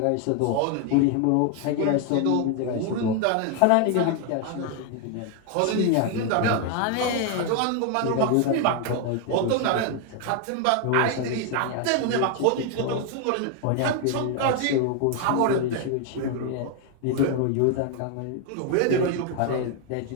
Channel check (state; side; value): different; both; correlation 0.01